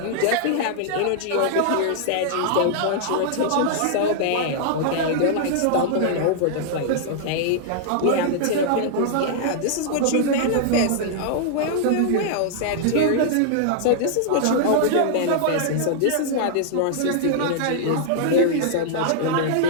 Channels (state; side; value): different; both; correlation -0.01